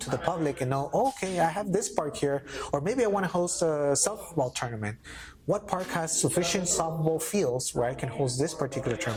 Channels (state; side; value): identical; both; correlation 1.00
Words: the public and know, okay, I have this park here, or maybe I want to host a softball tournament. What park has sufficient softball fields where I can host this particular